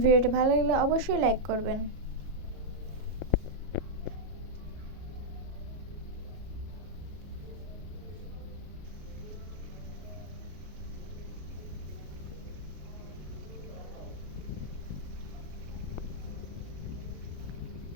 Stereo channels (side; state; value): left; late; 33 ms